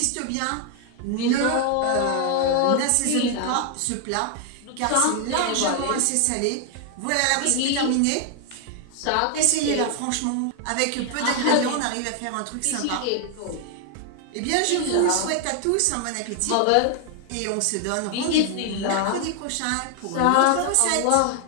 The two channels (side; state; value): both; different; correlation 0.00